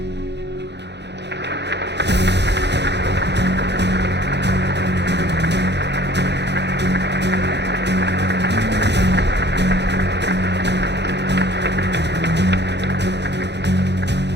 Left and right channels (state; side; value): late; left; 0.50 ms